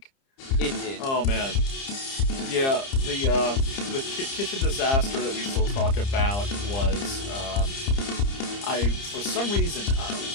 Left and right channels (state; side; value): late; right; 30 ms